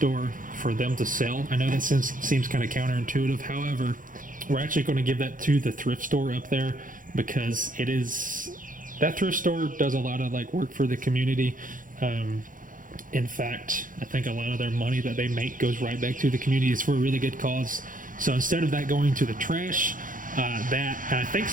for them to sell. I know that seems kind of counterintuitive. However, we're actually going to give that to the thrift store up there because that thrift store does a lot of work for the community. In fact, I think a lot of their money that they make goes right back to the community. It's for a really good cause. So instead of that going to the trash, and I think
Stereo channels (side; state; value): left; late; 0.39 ms